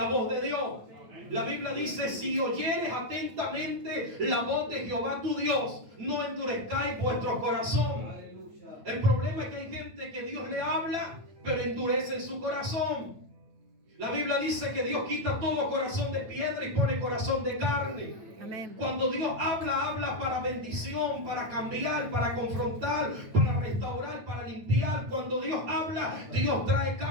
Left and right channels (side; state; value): left; late; 9.3 ms